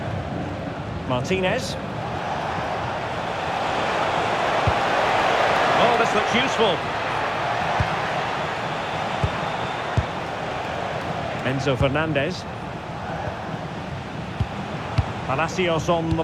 Martinez. Oh, this looks useful. Enzo Fernandez. Palacios on the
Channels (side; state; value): both; identical; correlation 1.00